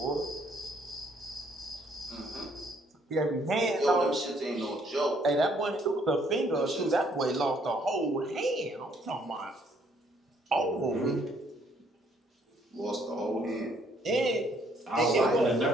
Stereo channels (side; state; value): both; normal; correlation 0.66